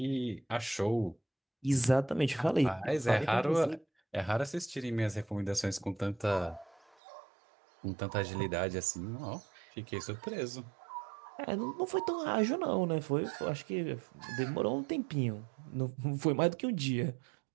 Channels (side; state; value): left; drops out; at 7.0 s